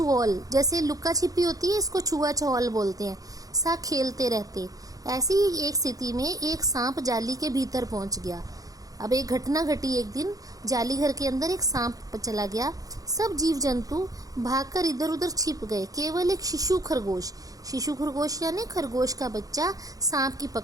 जैसे लुक्का छिपी होती है, इसको छुआ छुओल बोलते हैं, सा खेलते रहते। ऐसी ही एक स्थिति में एक सांप जाली के भीतर पहुंच गया। अब एक घटना घटी। एक दिन जाली घर के अंदर एक सांप चला गया। सब जीव जंतु भागकर इधर उधर छिप गए। केवल एक शिशु खरगोश यानी खरगोश का बच्चा सांप की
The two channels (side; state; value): left; late; 0.17 ms